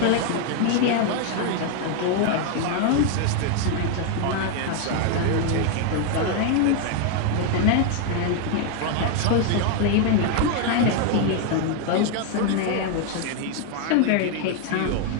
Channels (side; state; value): both; different; correlation 0.01